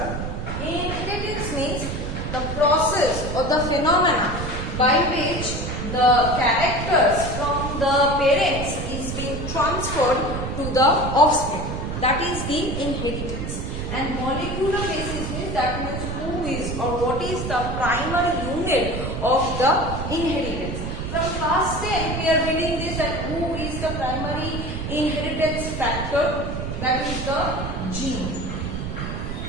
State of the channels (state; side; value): noise; right; rumble, 5 dB below the sound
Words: inheritance means the process or the phenomena by which the characters from the parents is being transferred to the offspring. That is the inheritance. And molecular basis means that means who is or what is the primary unit of the inheritance. From class 10 we are reading this, that who is the primary inheritance factor. That is the gene.